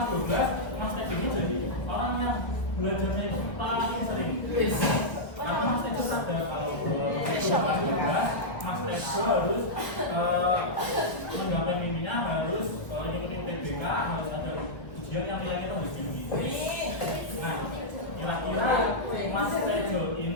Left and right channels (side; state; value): right; late; 1.1 ms